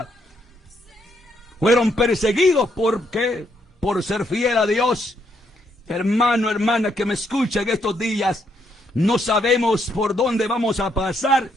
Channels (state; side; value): normal; both; correlation 0.74